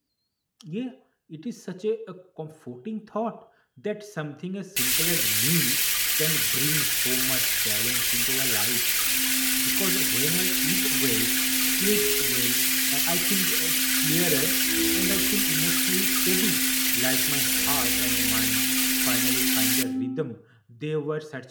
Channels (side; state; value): both; identical; correlation 1.00